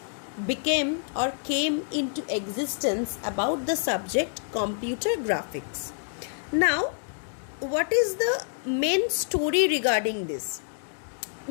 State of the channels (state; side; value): silent; right; digital silence